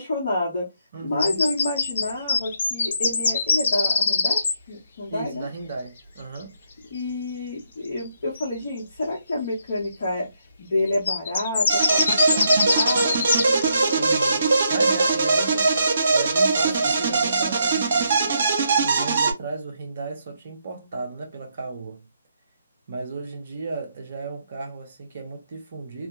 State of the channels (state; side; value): inverted; both; correlation -0.76